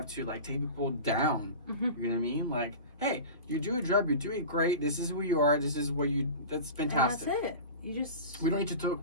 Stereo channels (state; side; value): inverted; both; correlation -0.32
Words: to like take people down? You know what I mean? Like, hey, you do a job, you do it great. This is who you are. This is what you. That's fantastic. And that's it. You just. We don't need to